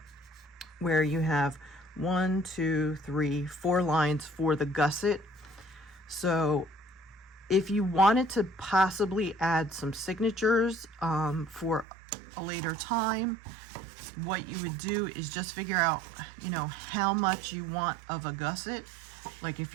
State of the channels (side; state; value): left; drops out; at 11.9 s